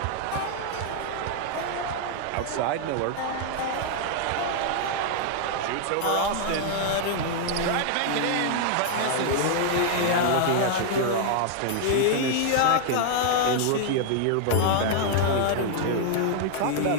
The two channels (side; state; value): both; different; correlation 0.00